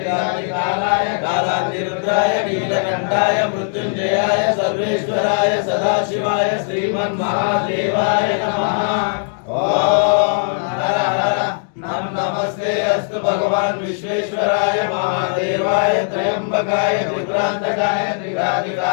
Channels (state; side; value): silent; right; digital silence